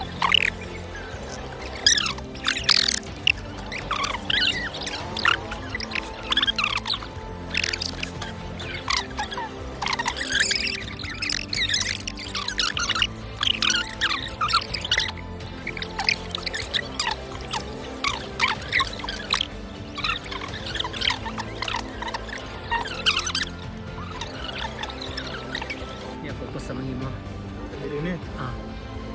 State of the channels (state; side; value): identical; both; correlation 1.00